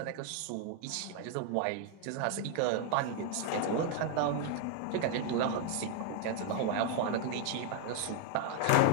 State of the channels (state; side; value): different; both; correlation 0.00